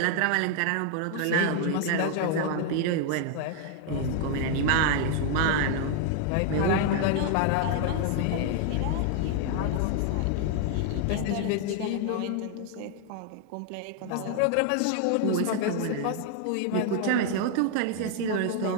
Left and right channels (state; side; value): different; both; correlation 0.00